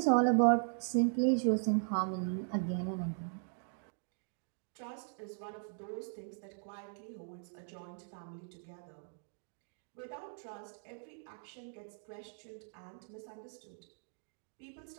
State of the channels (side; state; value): left; silent; digital silence